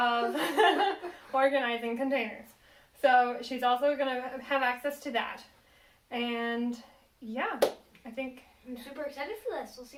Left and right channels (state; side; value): identical; both; correlation 1.00